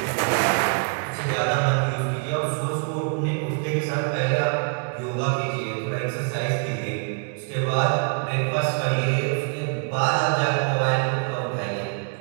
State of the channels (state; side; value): quieter; left; 39.5 dB